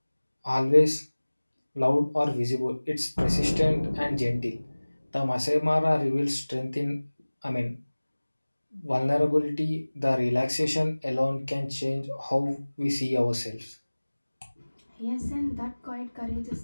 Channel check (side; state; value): both; inverted; correlation -1.00